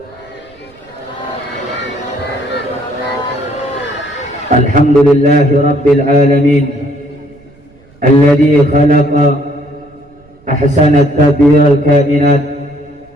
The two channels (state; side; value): noise; right; rumble, 29 dB below the sound